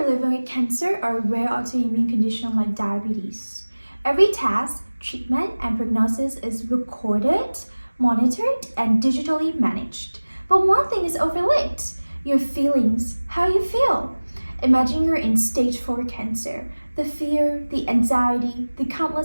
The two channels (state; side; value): inverted; both; correlation -1.00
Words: living with cancer or a rare autoimmune condition like diabetes. Every task, treatment, and prognosis is recorded, monitored, and digitally managed. But one thing is overlooked: your feelings, how you feel. Imagine you're in stage 4 cancer, the fear, the anxiety, the